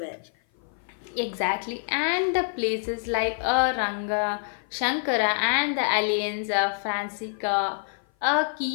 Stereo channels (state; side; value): silent; right; 56 dB below the other